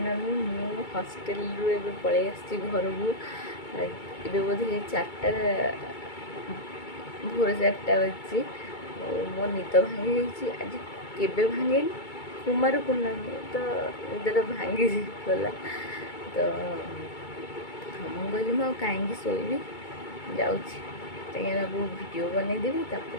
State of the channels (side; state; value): right; late; 2.3 ms